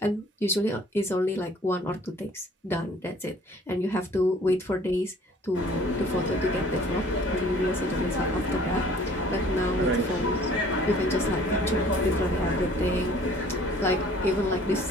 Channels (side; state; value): both; normal; correlation 0.53